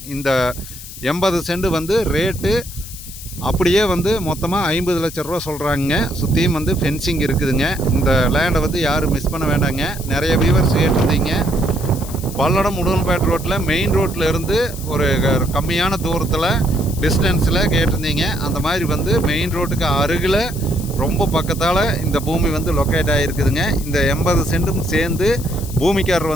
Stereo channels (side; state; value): left; noise; hiss, 13 dB below the sound